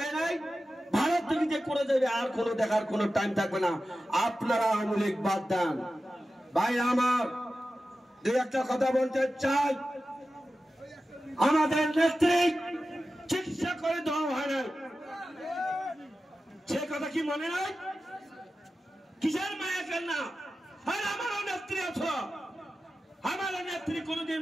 নাই, ভারত থেকে যে করে যাবে আর কোনো দেখার কোনো টাইম থাকবে না। আপনারা আওয়ামী লীগ বাদ দেন। ভাই আমার দুই একটা কথা বলতে চাই। আমাদের নেত্রী চিকিৎসা করে দেওয়া হয় না, সে কথা কি মনে নাই? কিসের মায়া কেন না? আর আমারও নেত্রী আছো, আমার নেত্রী কোনদিন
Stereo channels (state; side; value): normal; both; correlation 0.93